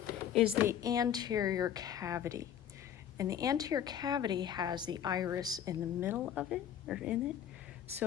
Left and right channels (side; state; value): right; quieter; 9.8 dB